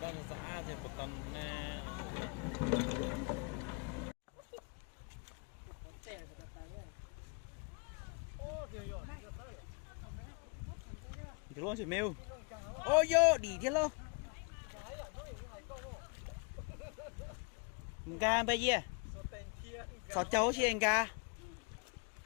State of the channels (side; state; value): right; quieter; 33.9 dB